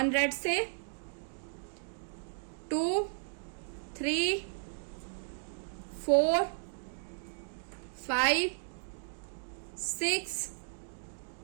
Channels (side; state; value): left; silent; digital silence